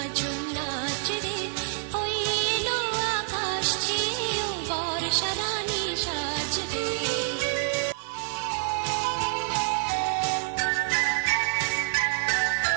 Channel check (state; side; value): silent; left; digital silence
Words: নাচ রে, ওই এলো আকাশ চেয়েও বর্ষা রানী সাজবে।